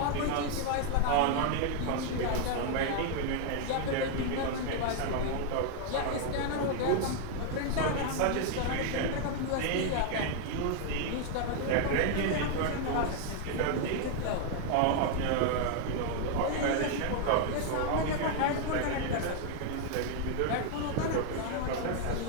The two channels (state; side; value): different; both; correlation 0.00